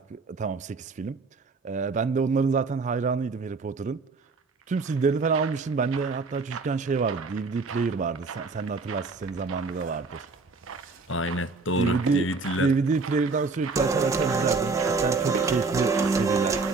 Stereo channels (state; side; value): quieter; left; 4.1 dB